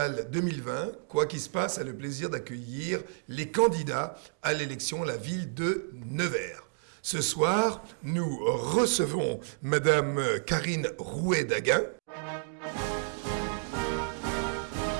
2020, Quoi qu'il se passe a le plaisir d'accueillir les candidats à l'élection à la ville de Nevers. Ce soir, nous recevons Madame Karine Rouet-Daguin.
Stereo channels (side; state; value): left; silent; digital silence